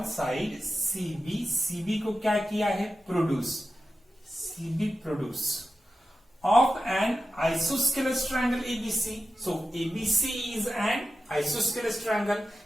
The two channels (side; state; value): both; normal; correlation 0.92